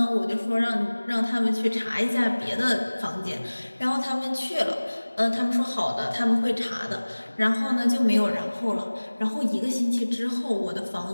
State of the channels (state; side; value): inverted; both; correlation -1.00